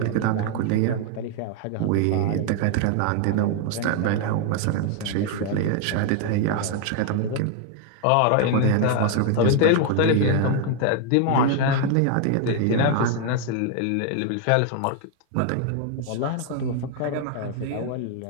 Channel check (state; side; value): different; both; correlation 0.00